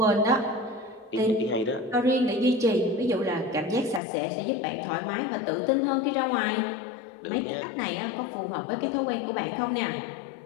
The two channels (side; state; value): right; drops out; at 4.0 s